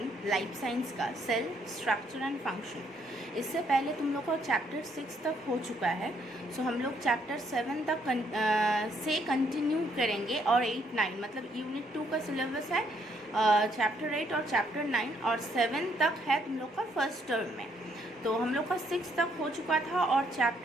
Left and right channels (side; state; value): both; normal; correlation 0.70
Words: लाइफ साइंस का, सेल स्ट्रक्चर एंड फंक्शन। इससे पहले तुम लोग का चैप्टर 6 तक हो चुका है। सो हम लोग चैप्टर 7 तक से कंटिन्यू करेंगे और 8, 9 मतलब यूनिट 2 का सिलेबस है चैप्टर 8 और चैप्टर 9 और 7 तक है तुम लोग का फर्स्ट टर्म में। तो हम लोग का 6 तक हो चुका था और